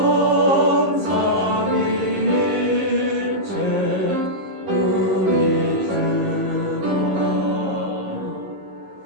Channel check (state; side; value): late; left; 15 ms